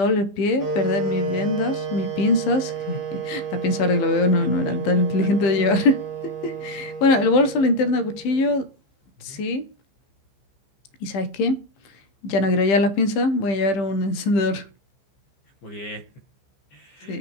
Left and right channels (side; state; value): right; late; 15 ms